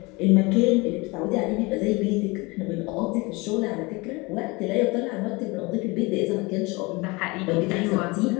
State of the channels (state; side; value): quieter; right; 25.2 dB